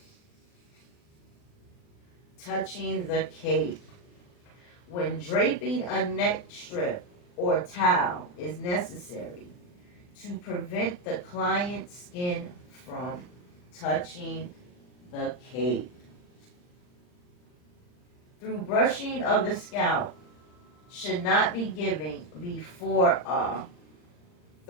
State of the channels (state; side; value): late; right; 39 ms